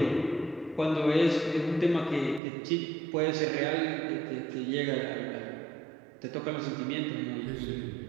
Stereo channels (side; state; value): left; drops out; at 2.4 s